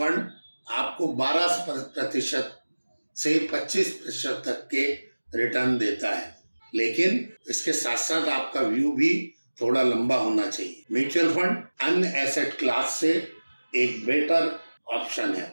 आपको 12% से 25% तक के रिटर्न देता है, लेकिन इसके साथ साथ आपका व्यू भी थोड़ा लंबा होना चाहिए। म्यूचुअल फंड अन्य एसेट क्लास से एक बेटर ऑप्शन है।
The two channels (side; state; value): both; inverted; correlation -1.00